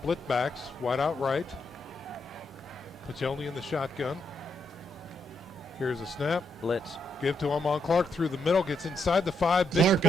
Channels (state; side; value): normal; both; correlation 0.79